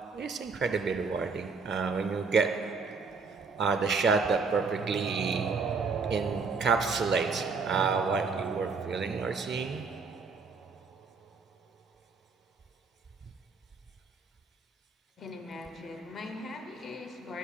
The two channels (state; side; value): quieter; left; 4.6 dB